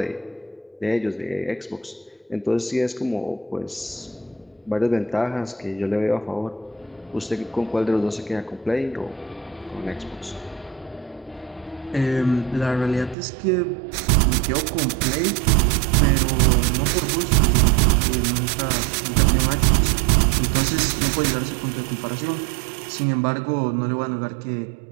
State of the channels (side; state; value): left; drops out; at 13.2 s